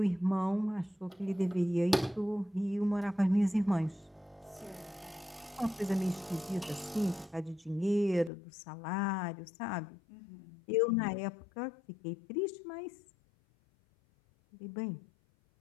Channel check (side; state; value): right; drops out; at 8.3 s